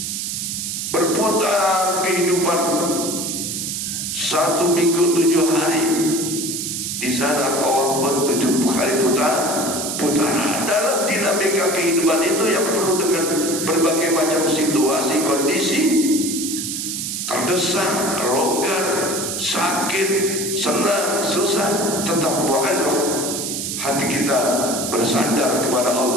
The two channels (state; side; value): noise; right; hiss, 3 dB below the sound